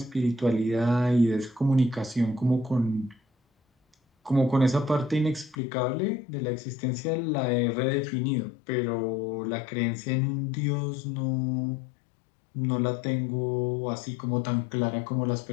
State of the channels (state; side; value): drops out; right; at 5.6 s